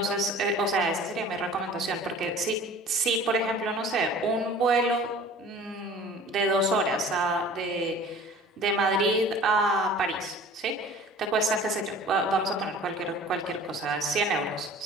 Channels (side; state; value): both; normal; correlation 0.45